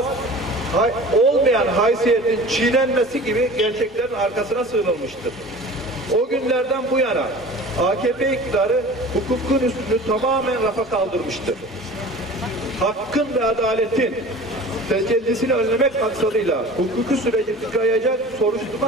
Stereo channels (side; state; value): both; normal; correlation 0.40